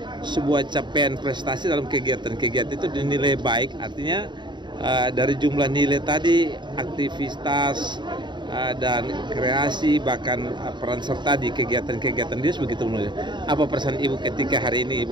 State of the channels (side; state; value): left; late; 0.22 ms